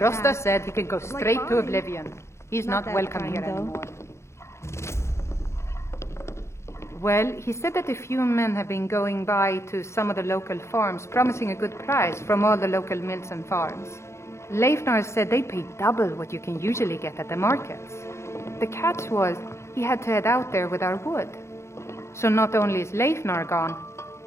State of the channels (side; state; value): right; late; 0.13 ms